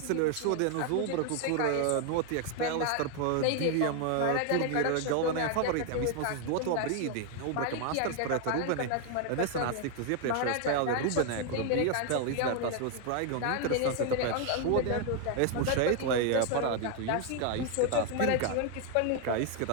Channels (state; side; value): different; both; correlation 0.01